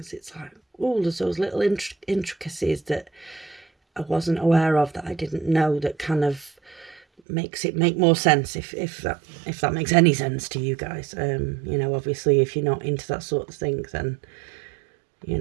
it's like, oh, there's those little intricacies that I wasn't aware of, that I didn't know, that kind of makes it make more sense, if that makes any sense to you guys. You know, obviously if you're not into that sort of thing, then, you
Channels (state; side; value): drops out; left; at 7.2 s